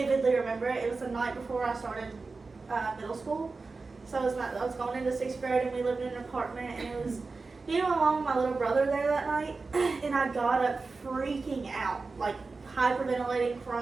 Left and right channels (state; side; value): quieter; left; 4.0 dB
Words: remember it. It was the night before I started middle school. So I was going into 6th grade, and we lived in an apartment, and it was along with my little brother there that night. And I got up freaking out, like hyperventilating,